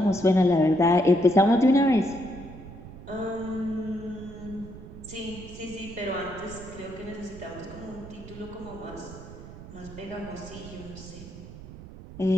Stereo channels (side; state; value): right; noise; rumble, 15 dB below the sound